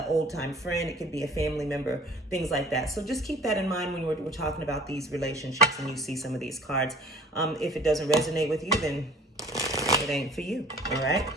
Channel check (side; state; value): both; normal; correlation 0.49